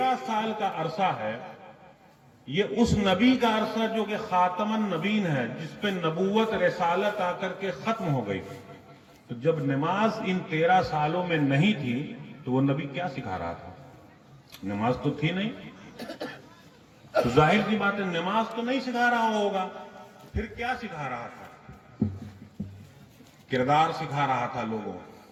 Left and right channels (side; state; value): both; identical; correlation 1.00